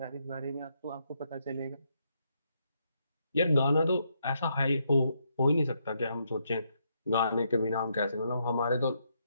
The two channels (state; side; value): inverted; both; correlation -0.77